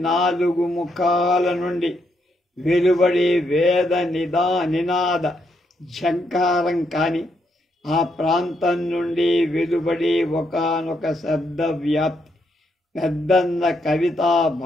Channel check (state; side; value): normal; both; correlation 0.78